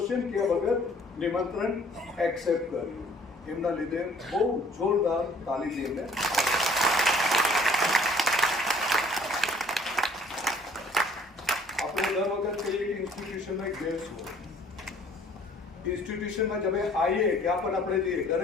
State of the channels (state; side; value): normal; both; correlation 0.56